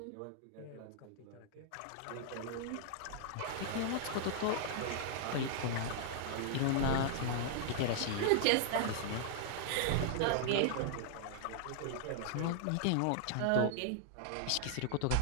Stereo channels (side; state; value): both; different; correlation -0.01